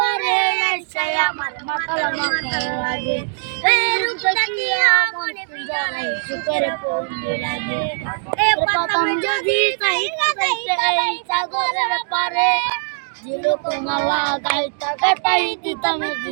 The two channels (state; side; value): silent; left; 64 dB below the other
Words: এসে আমার মাতাল মাতাল লাগে এই রূপ দেখিয়ে আমার জড়াই সুখের পন্দি লাগে প্রথম যদি তাই কাটাইতে এই সাগরের পারে মালা গাইতা গাইতাই দিতাম